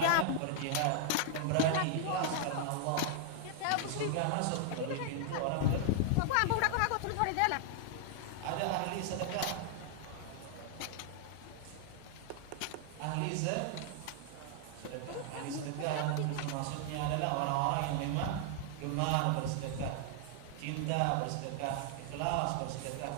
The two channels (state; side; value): different; both; correlation 0.00